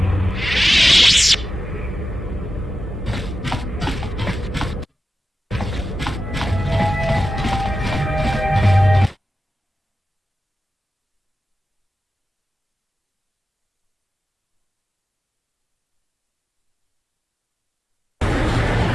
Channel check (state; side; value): normal; both; correlation 0.92